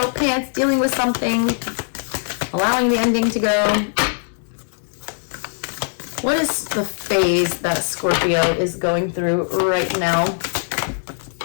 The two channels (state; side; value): silent; right; digital silence